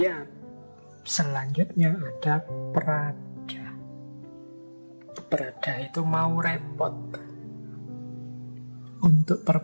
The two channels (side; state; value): both; inverted; correlation -1.00